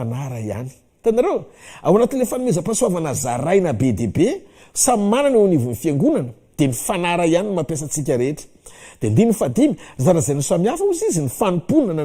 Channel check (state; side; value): identical; both; correlation 1.00